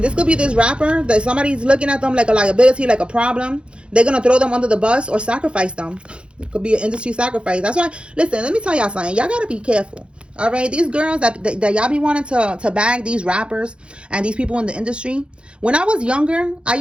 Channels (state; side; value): late; left; 0.057 ms